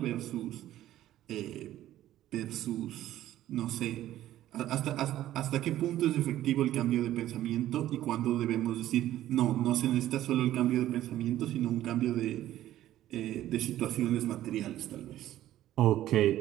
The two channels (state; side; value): quieter; left; 13.5 dB